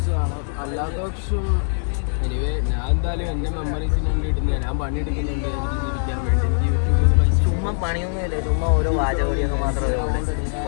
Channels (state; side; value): silent; right; digital silence